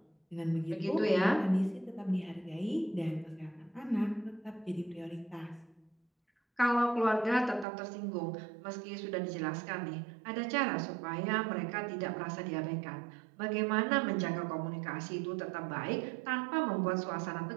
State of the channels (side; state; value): left; drops out; at 7.7 s